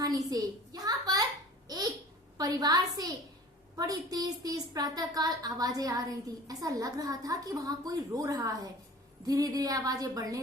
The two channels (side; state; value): both; normal; correlation 0.43